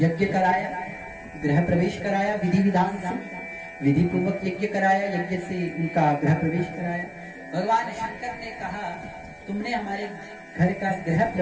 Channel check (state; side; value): identical; both; correlation 1.00